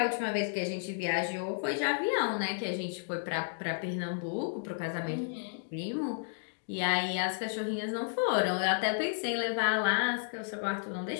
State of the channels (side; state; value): right; silent; digital silence